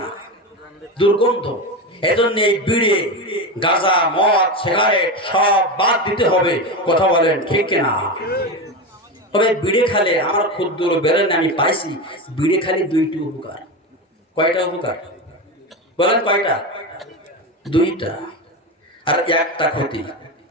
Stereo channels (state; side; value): normal; both; correlation 0.19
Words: না, দুর্গন্ধ। এই জন্য এই বিড়ি গাঁজা মদ সিগারেট সব বাদ দিতে হবে। কথা বলেন ঠিক কিনা? তবে বিড়ি খালে আমার ক্ষুদ্র বেরেন আমি পাইছি, বিড়ি খালি দুইটি উপকার। কয়টা উপকার বলেন? কয়টা? দুইটা, আর একটা ক্ষতি।